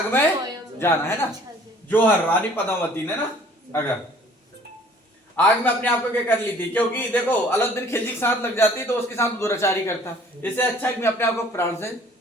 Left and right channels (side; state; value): both; normal; correlation 0.54